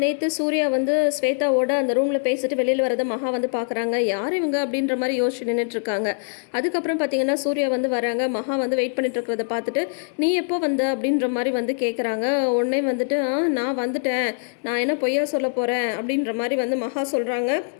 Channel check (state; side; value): silent; right; 63 dB below the other